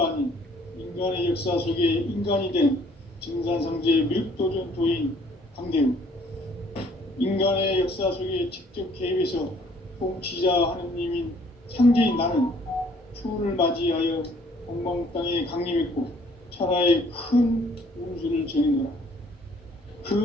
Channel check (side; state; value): both; normal; correlation 0.60